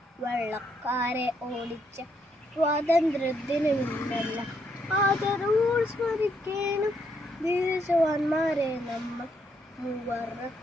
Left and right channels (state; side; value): normal; both; correlation 0.74